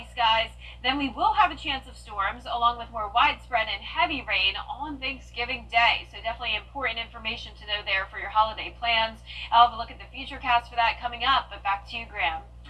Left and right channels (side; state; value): both; identical; correlation 1.00